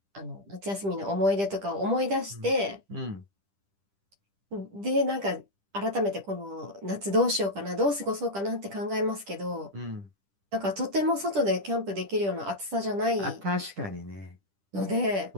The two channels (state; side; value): late; left; 10 ms